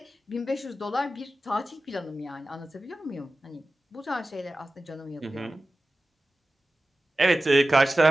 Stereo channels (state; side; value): normal; both; correlation 0.95